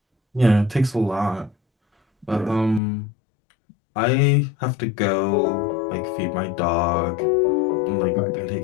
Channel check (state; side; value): drops out; right; at 2.8 s